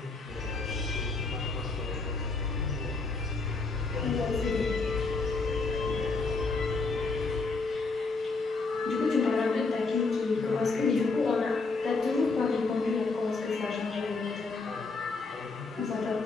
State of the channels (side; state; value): right; quieter; 3.9 dB